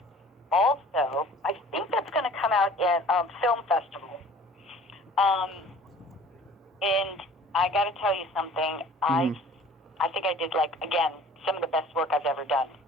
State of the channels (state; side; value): normal; both; correlation 0.48